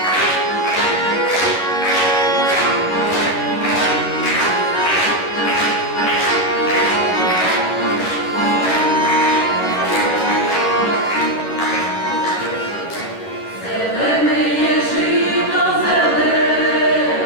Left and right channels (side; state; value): right; late; 11 ms